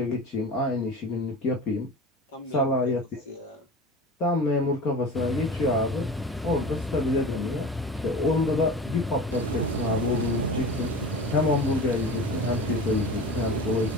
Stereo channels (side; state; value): both; normal; correlation 0.34